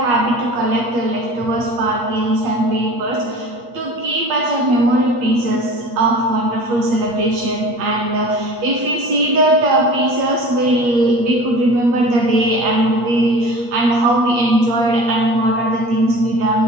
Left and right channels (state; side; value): late; left; 8.3 ms